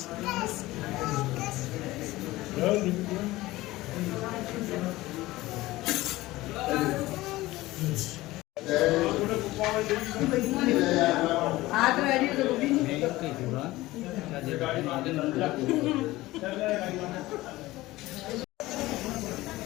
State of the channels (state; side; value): quieter; right; 18.2 dB